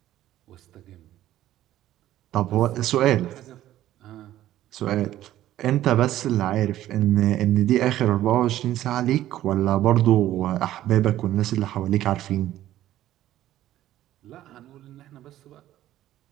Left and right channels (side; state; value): left; quieter; 13.5 dB